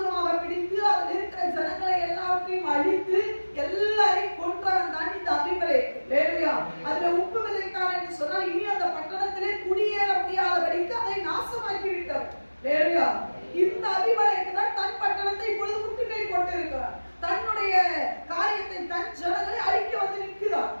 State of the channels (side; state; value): both; inverted; correlation -1.00